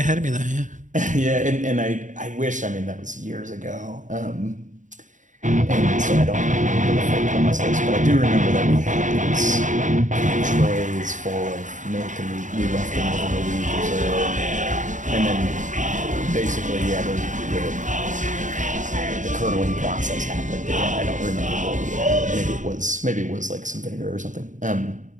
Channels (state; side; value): late; left; 0.36 ms